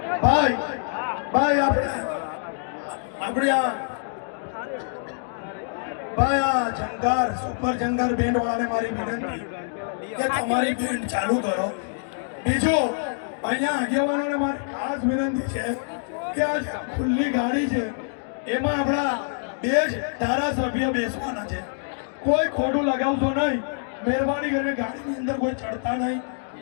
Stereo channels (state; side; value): silent; right; digital silence